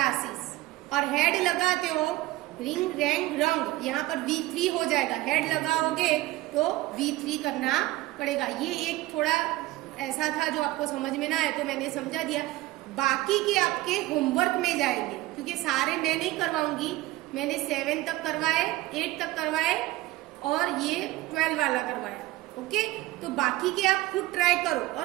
और हेड लगाते हो रिंग रैंक रंग, यहाँ पर V3 हो जाएगा, हेड लगाओगे तो V3 करना पड़ेगा। ये एक थोड़ा ऐसा था जो आपको समझ में ना आए तो मैंने समझा दिया। बाकी के आपके होमवर्क में जाएंगे, क्योंकि सारे मैं नहीं करवाऊंगी, मैंने 7 तक करवाए, 8 तक करवाए और ये 12 वाला करवाया। ओके, तो बाकी के आप खुद ट्राई करो,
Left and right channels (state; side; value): quieter; left; 17.7 dB